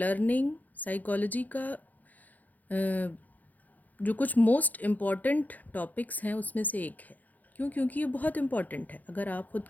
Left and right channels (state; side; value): late; right; 0.081 ms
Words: साइकोलॉजी का जो कुछ मोस्ट इम्पॉर्टेंट टॉपिक्स हैं उसमें से एक है। क्यों? क्योंकि ये बहुत इम्पॉर्टेंट है। अगर आप खुद